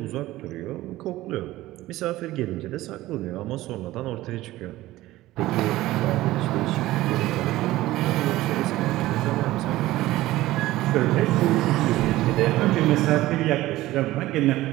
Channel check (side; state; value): left; quieter; 16.7 dB